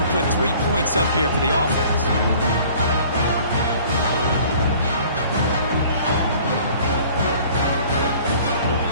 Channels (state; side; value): inverted; both; correlation -0.51